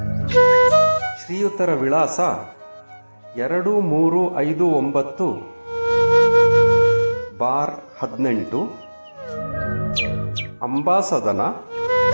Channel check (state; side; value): inverted; both; correlation -1.00